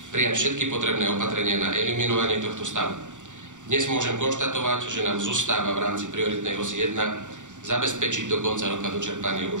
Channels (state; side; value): late; left; 0.86 ms